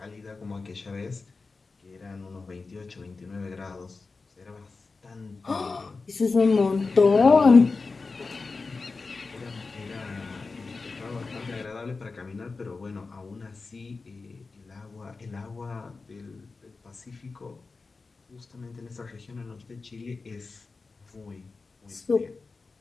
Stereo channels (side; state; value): right; quieter; 4.1 dB